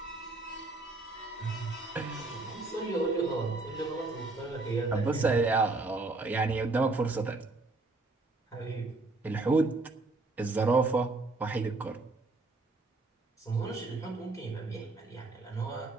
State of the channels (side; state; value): left; quieter; 3.3 dB